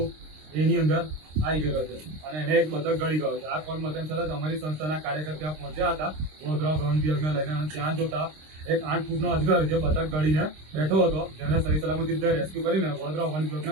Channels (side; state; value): left; late; 26 ms